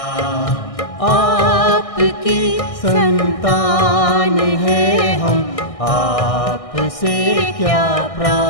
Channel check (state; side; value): late; right; 1.6 ms